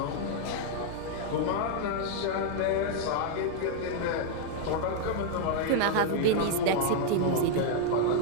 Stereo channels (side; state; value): both; different; correlation 0.00